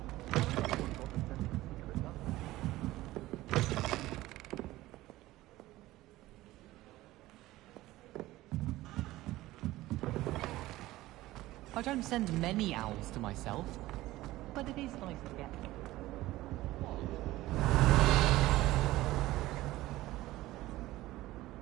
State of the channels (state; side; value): quieter; left; 17.1 dB